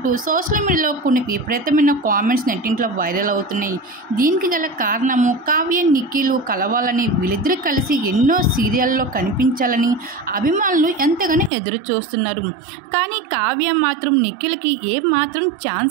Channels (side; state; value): left; drops out; at 11.5 s